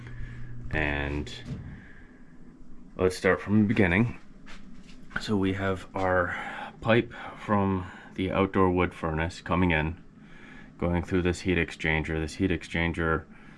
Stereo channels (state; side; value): identical; both; correlation 1.00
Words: And let's start from the beginning. So we have our pipe from the outdoor wood furnace coming in, going through this heat exchanger. This heat exchanger